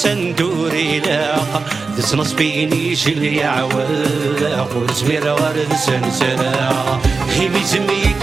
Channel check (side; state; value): left; quieter; 4.3 dB